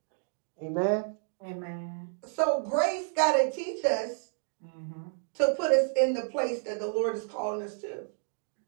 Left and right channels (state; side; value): silent; left; digital silence